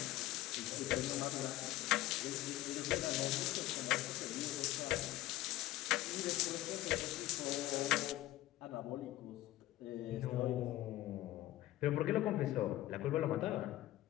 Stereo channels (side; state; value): right; quieter; 15.6 dB